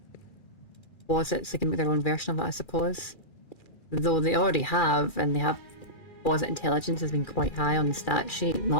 posits. They can make their own version of it, I suppose. Though they already have, and they have posit intelligence has been quite high on the stat sheet,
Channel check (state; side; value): late; right; 2.4 ms